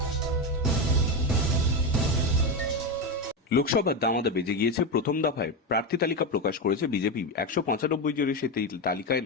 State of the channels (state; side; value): normal; both; correlation 0.13